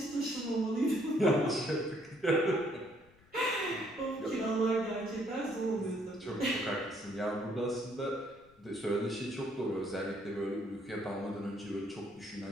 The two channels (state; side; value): noise; left; rumble, 28 dB below the sound